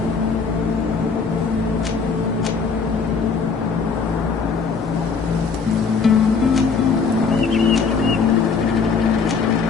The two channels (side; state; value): right; quieter; 5.2 dB